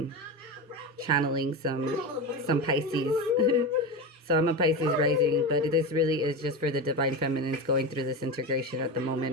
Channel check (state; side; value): normal; both; correlation 0.21